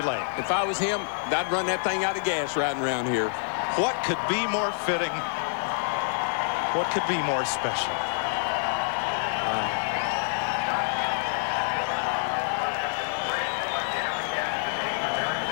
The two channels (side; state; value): right; silent; 60 dB below the other